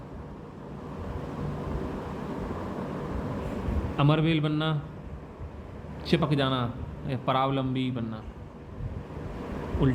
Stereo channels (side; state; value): both; identical; correlation 1.00